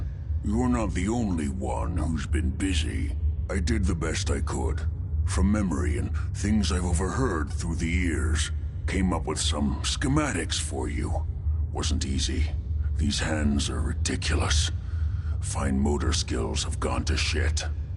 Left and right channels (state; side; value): identical; both; correlation 1.00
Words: You're not the only one who's been busy. I did the best I could. From memory and things I've overheard through the years. Came up with some schematics for you. Wasn't easy. These hands are ridiculous. Fine motor skills have gone to shit.